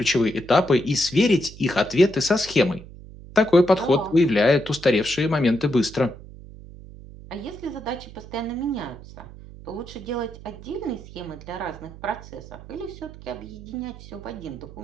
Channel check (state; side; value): noise; right; hum, 17 dB below the sound